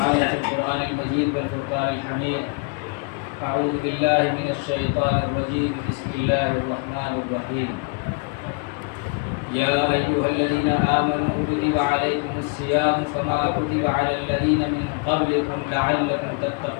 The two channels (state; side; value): quieter; right; 32.1 dB